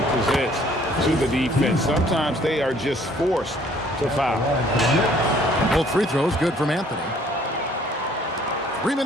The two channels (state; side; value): normal; both; correlation 0.59